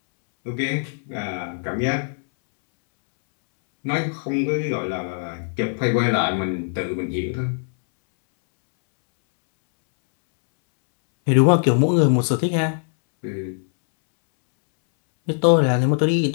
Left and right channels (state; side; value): silent; right; 64 dB below the other